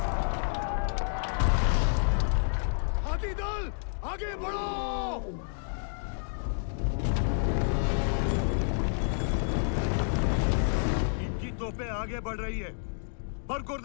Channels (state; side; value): silent; right; digital silence